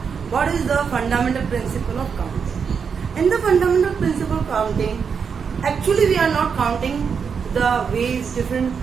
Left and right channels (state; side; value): quieter; left; 6.3 dB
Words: what is the fundamental principle of counting. In the fundamental principle of counting, actually we are not counting the ways, different